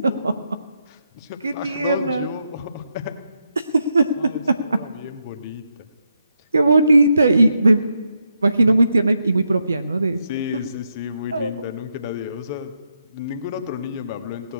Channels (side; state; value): both; inverted; correlation -0.81